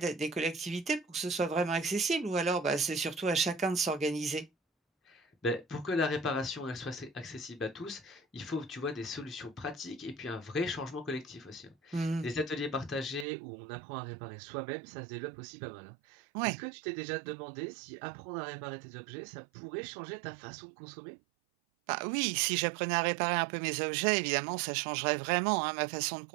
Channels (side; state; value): left; drops out; at 13.2 s